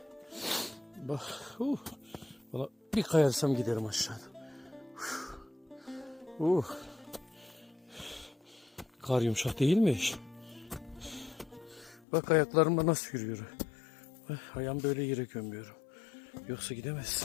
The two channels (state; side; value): drops out; right; at 12.1 s